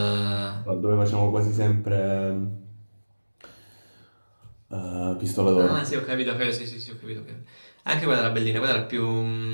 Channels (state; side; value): inverted; both; correlation -1.00